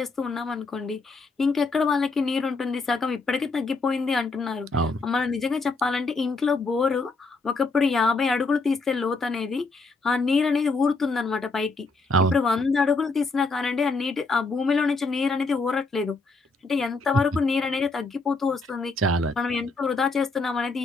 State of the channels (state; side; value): quieter; right; 3.6 dB